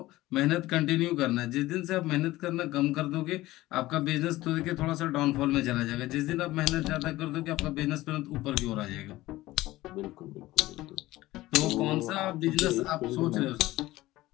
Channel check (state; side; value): quieter; right; 17.5 dB